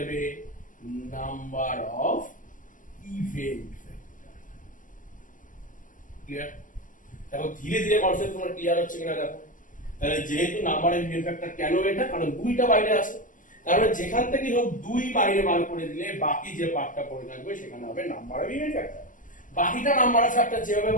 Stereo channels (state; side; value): late; right; 0.38 ms